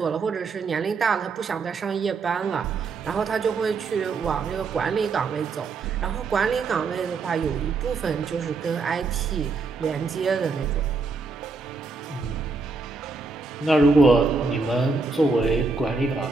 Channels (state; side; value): quieter; left; 4.2 dB